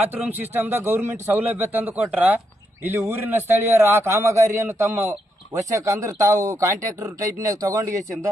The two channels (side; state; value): both; normal; correlation 0.80